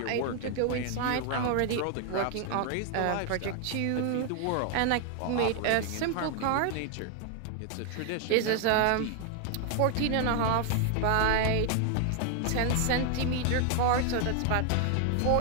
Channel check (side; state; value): both; different; correlation 0.00